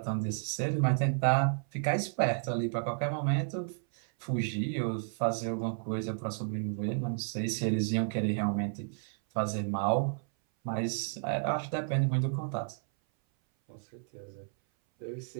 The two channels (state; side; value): silent; left; 56 dB below the other